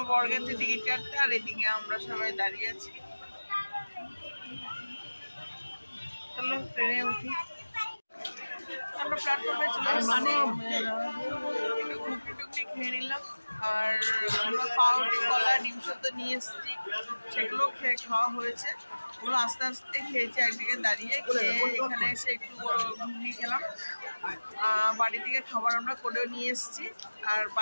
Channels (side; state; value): both; inverted; correlation -1.00